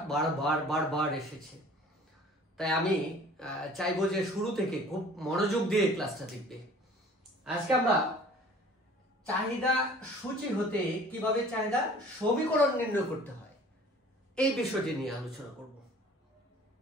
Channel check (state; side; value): normal; both; correlation 0.49